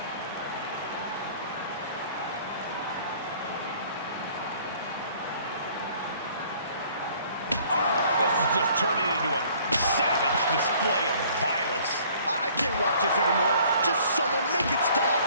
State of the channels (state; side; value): inverted; both; correlation -0.56